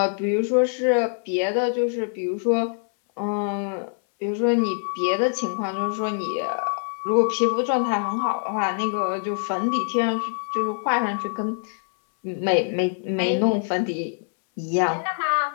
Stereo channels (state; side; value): silent; right; 62 dB below the other